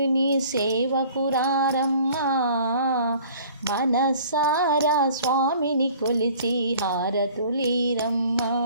సేవకురారమ్మా, మనసారా స్వామిని కొలిచి హారతులీరమ్మా.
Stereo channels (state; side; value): inverted; both; correlation -0.50